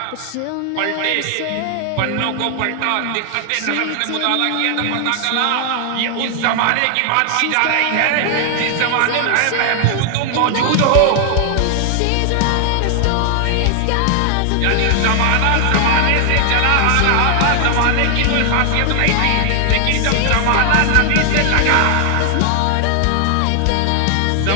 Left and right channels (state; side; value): different; both; correlation 0.00